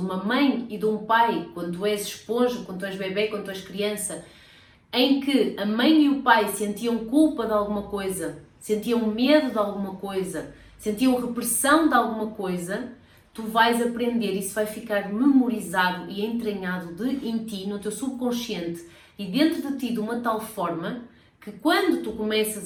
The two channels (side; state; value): both; identical; correlation 1.00